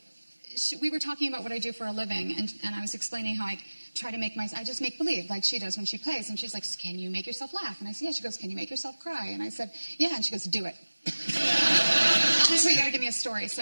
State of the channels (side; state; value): both; inverted; correlation -1.00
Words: we were talking about what I do for a living, and I was explaining how I try to I just make believe, like she does when she plays. And she's like, "Can you make yourself laugh?" And I said, "Yeah." She goes, "Can you make yourself cry?" And I said, "Yeah." And she goes, "Do it." I said, "You got to give me a story."